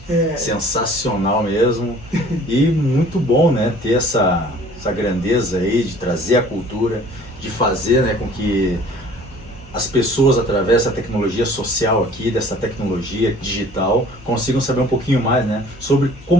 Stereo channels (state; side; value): normal; both; correlation 0.50